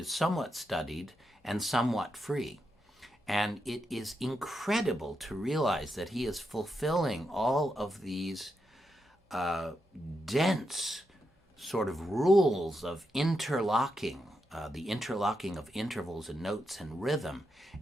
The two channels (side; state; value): both; normal; correlation 0.85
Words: somewhat studied and somewhat free. And it is incredible to realize that he is fulfilling all of these dense sort of rules of interlocking, the interlocking of intervals and notes and rhythm,